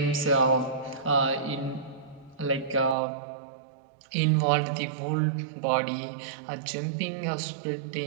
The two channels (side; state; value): left; drops out; at 3.0 s